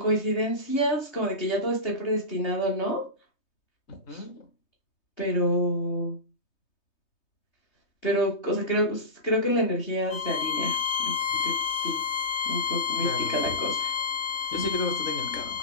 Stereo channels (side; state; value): right; late; 3.2 ms